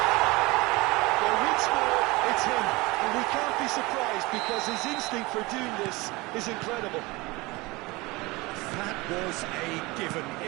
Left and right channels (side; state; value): left; quieter; 22.9 dB